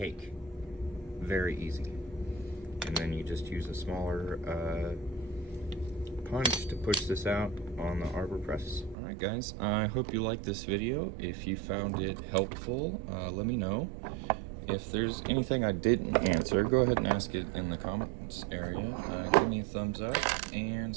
Very easy. And then you just use a smaller punch to push this out on the arbor press. Alright guys, I hope you liked this video. If you found it helpful, let me know. If there's anything I didn't answer, go ahead and ask it in the comments area. Give me a thumbs up and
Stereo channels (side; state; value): left; drops out; at 9.0 s